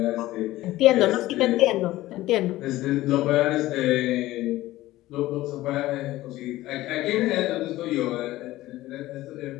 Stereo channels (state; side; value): quieter; right; 16.6 dB